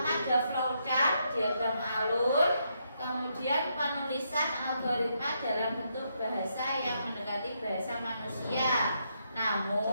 ada flowchart, diagram alur, kemudian penulisan algoritma dalam bentuk bahasa yang mendekati bahasa manusia,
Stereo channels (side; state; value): both; inverted; correlation -0.78